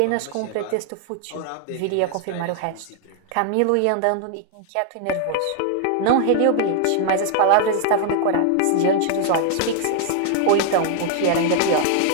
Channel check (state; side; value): different; both; correlation 0.00